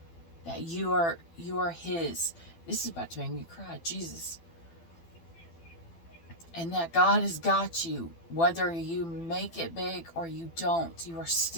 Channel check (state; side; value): late; right; 12 ms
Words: that you are His. This is about to make me cry, Jesus. And that God has got you. Whether you make it big or you don't, you are